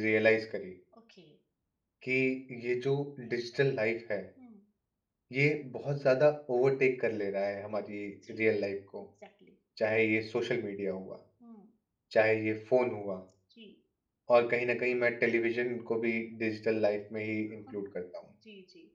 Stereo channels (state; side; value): identical; both; correlation 1.00